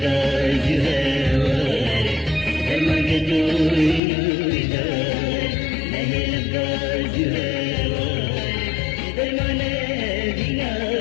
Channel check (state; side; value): drops out; right; at 4.0 s